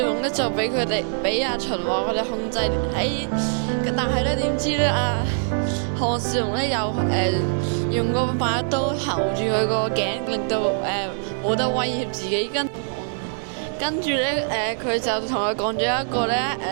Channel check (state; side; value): silent; left; digital silence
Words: 龍咧就俾秦王佢哋控制喺，但係咧點知咧項少龍咧又用個把刀喉住佢個頸，令到冇得威脅自己，跟住咧佢就同佢講咗一個咧